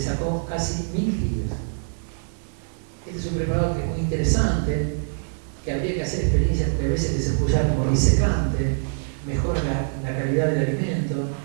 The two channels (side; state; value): left; silent; digital silence